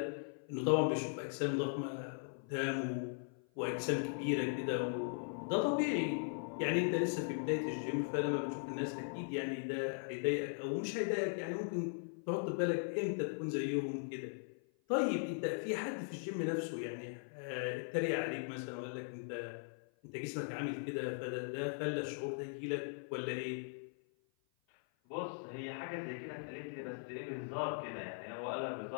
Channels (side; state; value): right; silent; 52 dB below the other